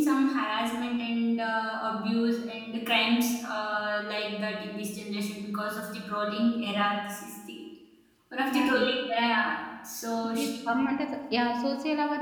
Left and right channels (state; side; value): identical; both; correlation 1.00